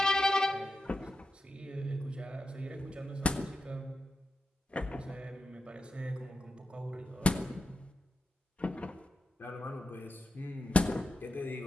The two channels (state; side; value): normal; both; correlation 0.87